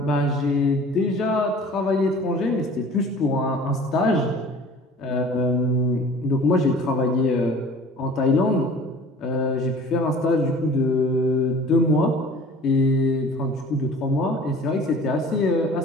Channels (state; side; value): normal; both; correlation 0.46